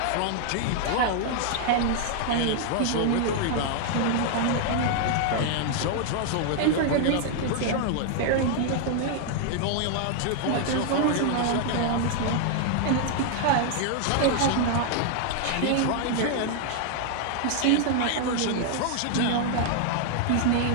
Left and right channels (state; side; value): different; both; correlation 0.00